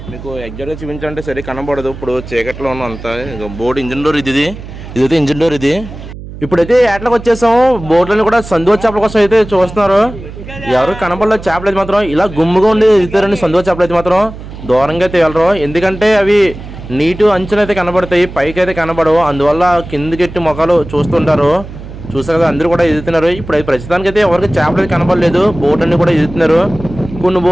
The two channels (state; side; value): noise; right; hum, 13 dB below the sound